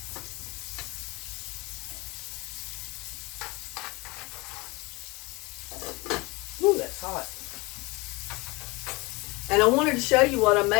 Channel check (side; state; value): right; quieter; 25.0 dB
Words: And I wanted to show you what I